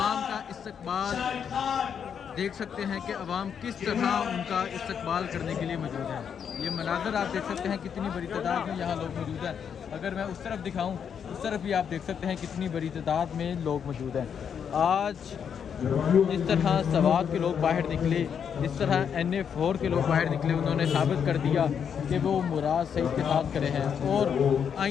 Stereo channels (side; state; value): right; quieter; 7.6 dB